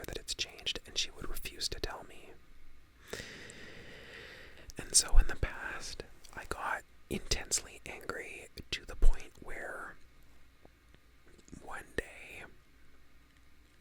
that it's changed, and she would refuse to tell me. And so in the past, I got intensely angry to the point where one day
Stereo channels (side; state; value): both; identical; correlation 1.00